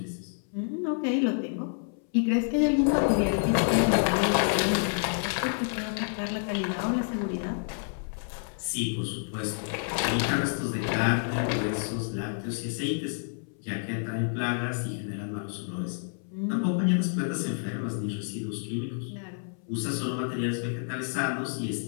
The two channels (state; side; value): silent; right; 59 dB below the other